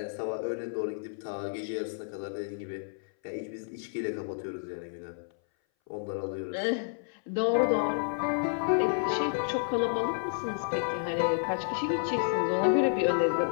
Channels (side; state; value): right; silent; 57 dB below the other